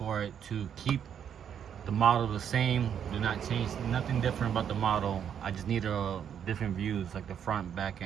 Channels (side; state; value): left; quieter; 8.6 dB